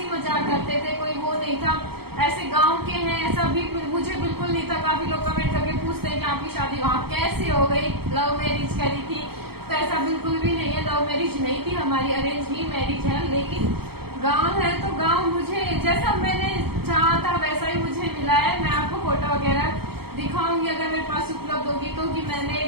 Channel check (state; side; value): late; left; 0.96 ms